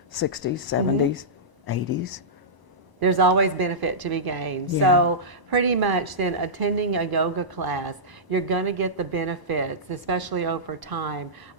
60s, 70s, 80s. There's always benefit to be gained. Yeah. So pretty much then attending a yoga class, you're going to get the benefits, especially over time,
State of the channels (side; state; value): left; late; 1.0 ms